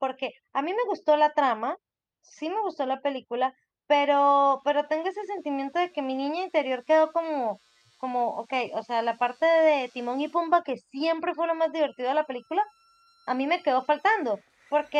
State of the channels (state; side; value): identical; both; correlation 1.00